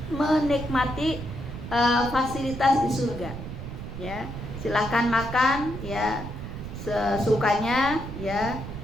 menikmati fasilitas di surga. Ya, silahkan makan ya sesukanya ya,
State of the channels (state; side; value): noise; right; rumble, 8 dB below the sound